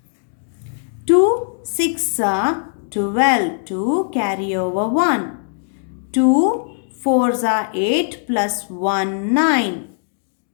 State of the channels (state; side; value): silent; right; digital silence